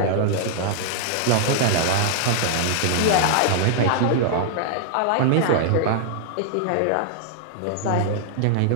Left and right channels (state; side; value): different; both; correlation -0.01